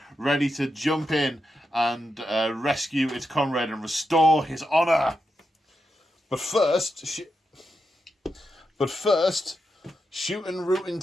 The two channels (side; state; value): both; normal; correlation 0.87